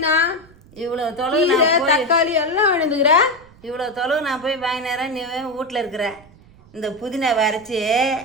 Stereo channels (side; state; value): right; noise; rumble, 25 dB below the sound